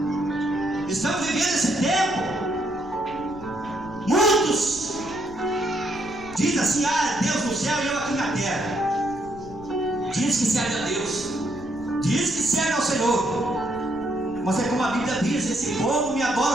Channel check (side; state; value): left; noise; rumble, 18 dB below the sound